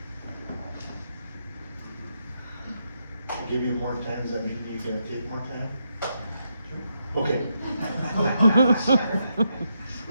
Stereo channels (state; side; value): inverted; both; correlation -0.81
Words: I'll give you more time, does that mean you're gonna take more time? Okay.